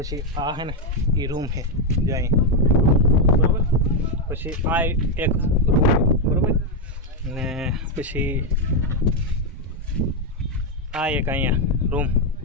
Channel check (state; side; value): normal; both; correlation 0.03